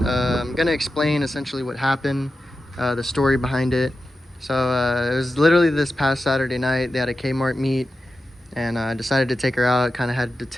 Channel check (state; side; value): normal; both; correlation 0.91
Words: I'm gonna explain essentially what happened, the story behind it. So it was literally this past Saturday night. They had a Kmart meet, and I decided to take her out. Kind of had to